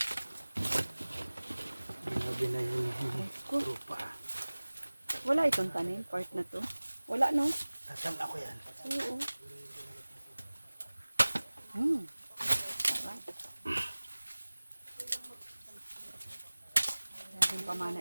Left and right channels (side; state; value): both; inverted; correlation -1.00